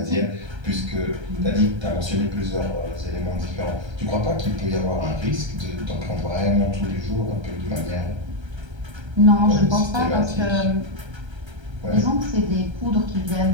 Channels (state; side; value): late; left; 1.3 ms